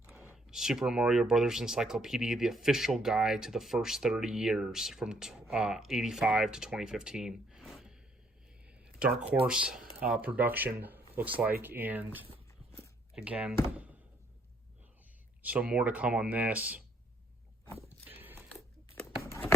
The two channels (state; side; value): normal; both; correlation 0.69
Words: Super Mario Brothers Encyclopedia, the official guide to the first 30 years from 85 to 2015. Dark Horse production looks like, and again, so more to come on this.